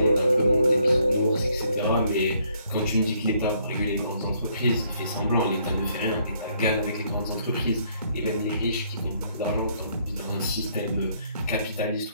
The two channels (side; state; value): both; inverted; correlation -0.68